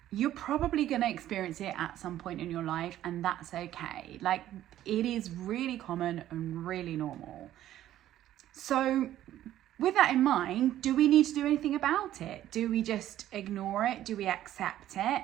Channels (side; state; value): left; quieter; 12.8 dB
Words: you're probably going to experience it at some point in your life, and that's okay. Like, it is really common and really normal. So with that in mind, do we need to do anything about it? Do we just ignore it? Do we accept it?